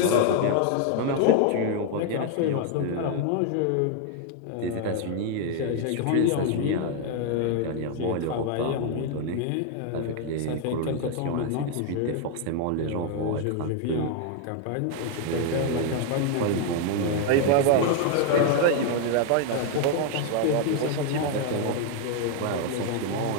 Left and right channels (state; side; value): different; both; correlation 0.00